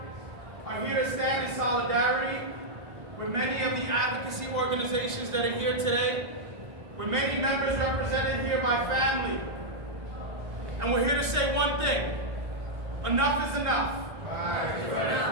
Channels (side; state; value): left; late; 1.5 ms